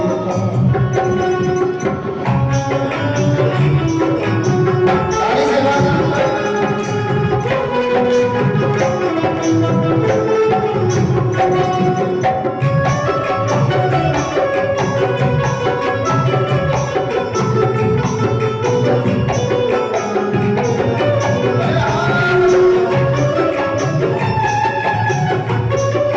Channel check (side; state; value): both; identical; correlation 1.00